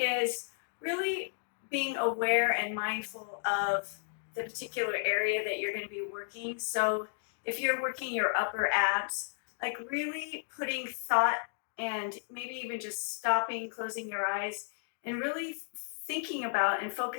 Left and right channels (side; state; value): right; silent; digital silence